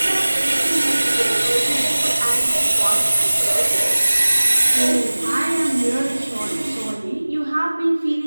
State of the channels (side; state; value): both; inverted; correlation -1.00